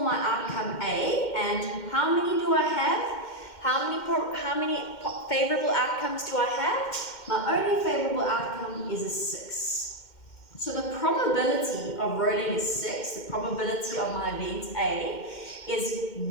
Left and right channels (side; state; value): right; late; 2.1 ms